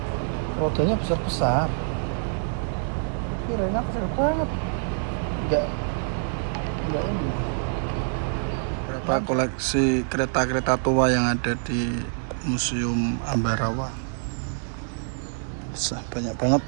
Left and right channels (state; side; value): silent; left; 61 dB below the other